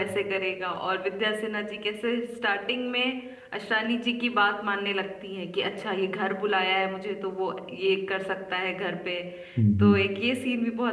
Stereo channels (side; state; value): both; identical; correlation 1.00